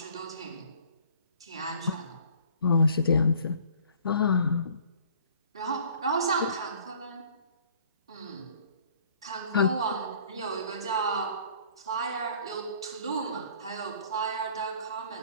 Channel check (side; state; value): both; inverted; correlation -0.54